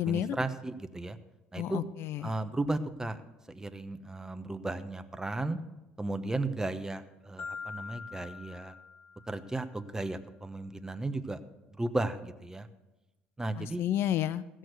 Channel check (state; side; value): normal; both; correlation 0.75